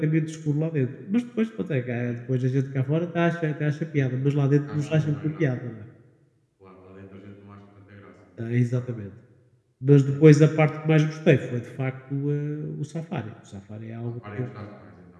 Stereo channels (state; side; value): identical; both; correlation 1.00